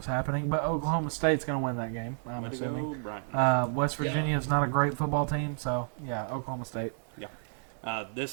happening. But Oklahoma State's going to win that game. I'm Way to assuming. go, Brian. West Virginia is not a great football team, so yeah, Oklahoma State.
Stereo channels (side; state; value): left; silent; 57 dB below the other